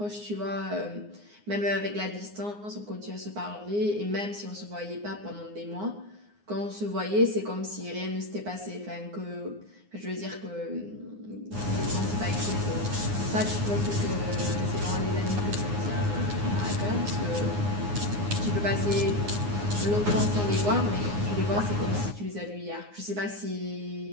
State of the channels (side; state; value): left; late; 9.7 ms